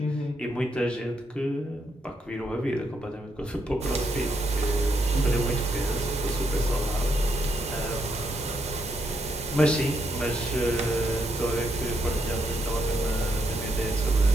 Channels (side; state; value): both; normal; correlation 0.77